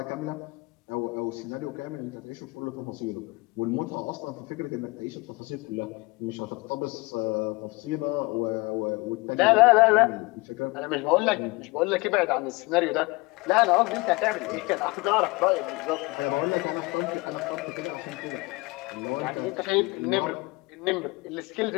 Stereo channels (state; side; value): quieter; right; 24.5 dB